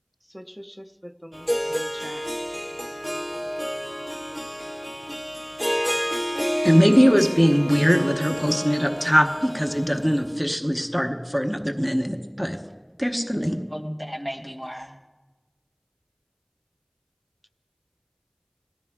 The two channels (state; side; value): identical; both; correlation 1.00